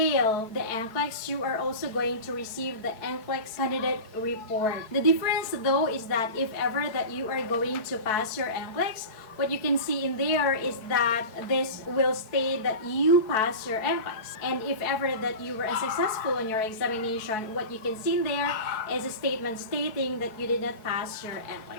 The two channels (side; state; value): right; late; 4.6 ms